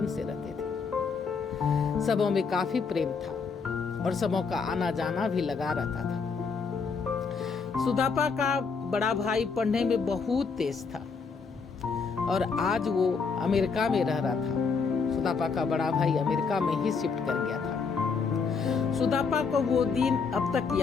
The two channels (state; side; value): quieter; right; 5.2 dB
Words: से रहते थे। सबों में काफी प्रेम था और सबों का आना जाना भी लगा रहता था। सुदापा का बड़ा भाई पढ़ने में बहुत तेज था और आज वो अमेरिका में रह रहा था। सुदापा का बड़ा भाई अमेरिका में ही शिफ्ट कर गया था। सुदापा को वो दिन अब तक